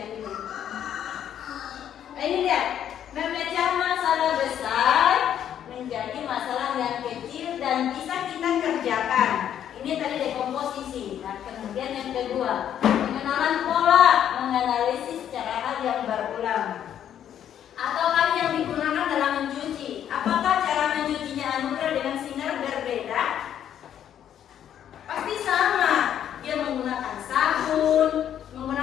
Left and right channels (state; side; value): quieter; right; 10.0 dB